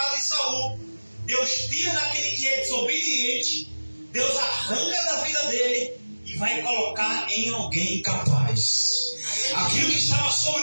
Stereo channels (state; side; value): inverted; both; correlation -1.00